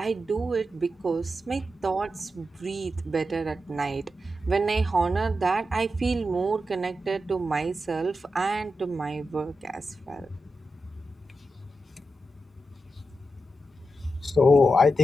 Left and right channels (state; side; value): normal; both; correlation 0.88